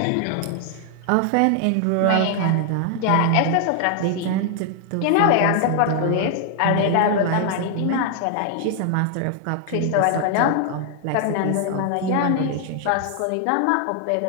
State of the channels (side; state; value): both; different; correlation 0.00